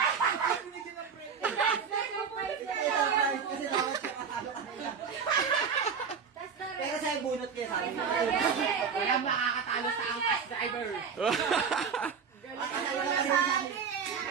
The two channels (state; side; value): quieter; left; 6.3 dB